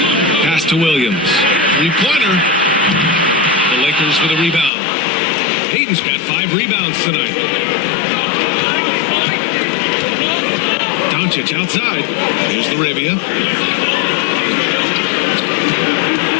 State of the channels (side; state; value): right; drops out; at 4.7 s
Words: Pass to Williams. 3-pointer. The Lakers with a rebound. Aiden's got 5 rebounds tonight. Doncic outside. Here's LaRavia.